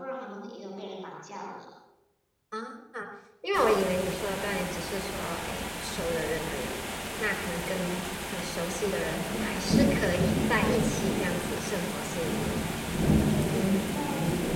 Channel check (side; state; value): both; identical; correlation 1.00